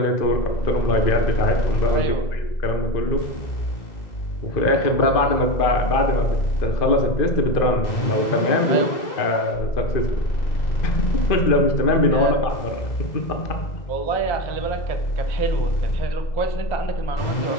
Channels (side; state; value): right; late; 2.0 ms